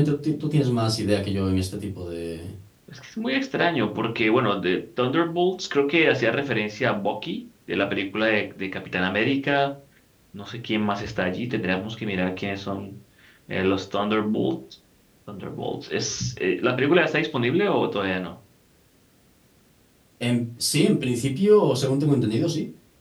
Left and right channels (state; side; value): identical; both; correlation 1.00